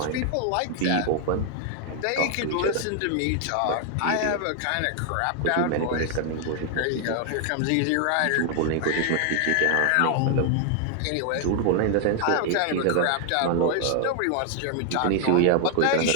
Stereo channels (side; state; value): both; different; correlation 0.00